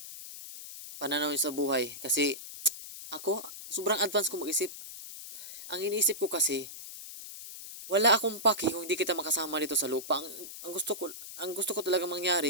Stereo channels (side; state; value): left; noise; hiss, 11 dB below the sound